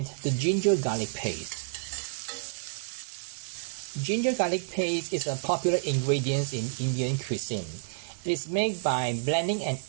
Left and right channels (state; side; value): silent; left; 58 dB below the other